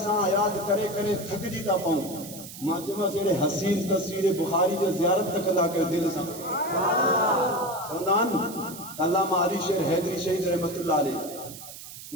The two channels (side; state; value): right; noise; hiss, 13 dB below the sound